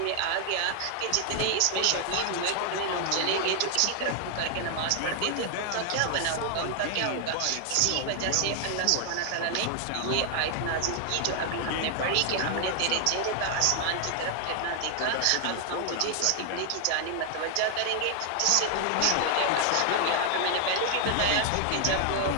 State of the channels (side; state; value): both; different; correlation 0.00